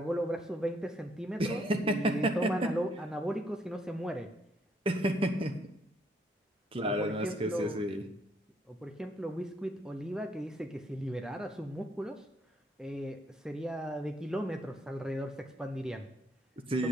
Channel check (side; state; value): both; normal; correlation 0.70